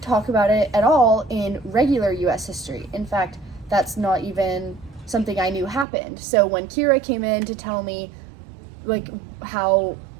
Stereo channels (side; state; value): left; drops out; at 5.9 s